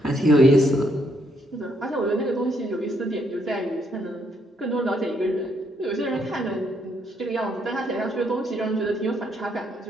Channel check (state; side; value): normal; both; correlation 0.73